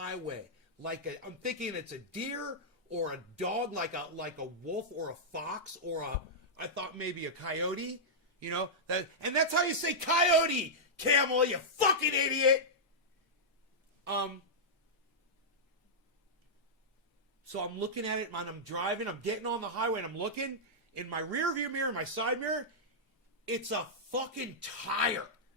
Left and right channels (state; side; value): normal; both; correlation -0.09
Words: I'm thinking it's a deer or a dog, like a wolf or a fox or I thought maybe a coyote, you know? And that's how you say coyote, Camel, you fucking idiot! So I'm looking at it, and I'm driving, I'm getting on the highway, and I'm looking in my rear view mirror, my side mirror, it's a fucking tire.